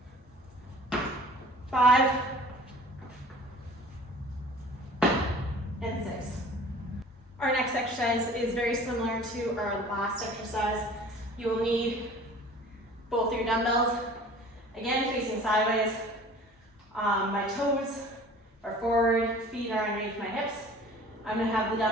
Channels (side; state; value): both; normal; correlation 0.46